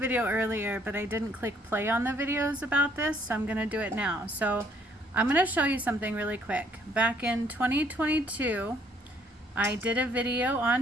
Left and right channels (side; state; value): both; normal; correlation 0.65